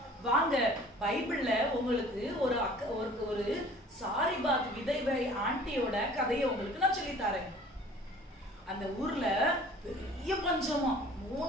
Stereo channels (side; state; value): both; normal; correlation 0.49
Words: வாங்க, பைபிள்ல உங்களுக்கு ஒரு சாரிபாத் விதவை ஆண்டியோட கதையை உங்களுக்கு நான் சொல்லி தரேன். அந்த ஊர்ல பெரிய பஞ்சமா,